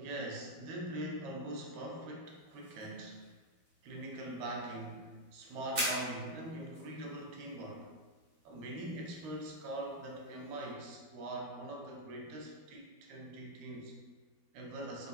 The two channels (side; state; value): left; late; 12 ms